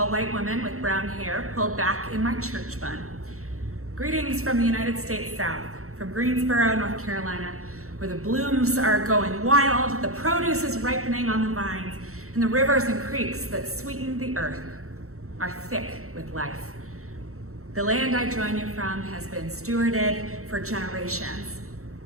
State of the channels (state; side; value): late; left; 0.64 ms